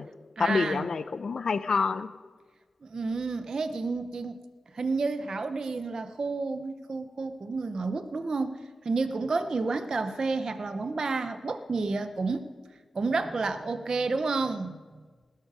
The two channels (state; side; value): normal; both; correlation 0.89